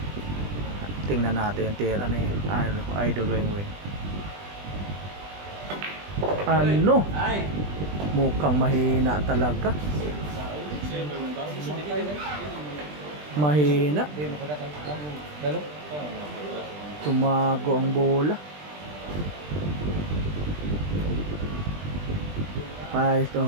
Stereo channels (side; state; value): left; late; 20 ms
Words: Tingnan natin yung tira ni Idol Wing Wing. Ay! Mukhang mahina talaga. Mahina. Tumago ang bola. Ay,